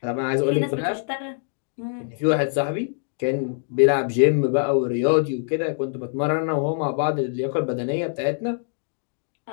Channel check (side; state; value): right; silent; 63 dB below the other